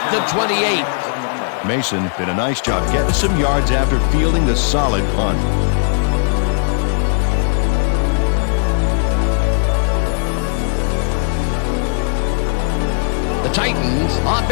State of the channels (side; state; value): right; silent; digital silence